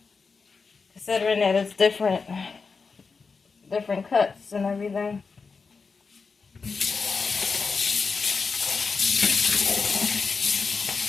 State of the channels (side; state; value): right; quieter; 4.8 dB